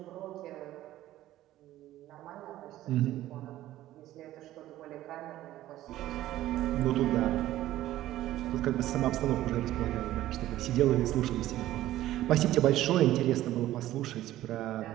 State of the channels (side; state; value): left; quieter; 14.5 dB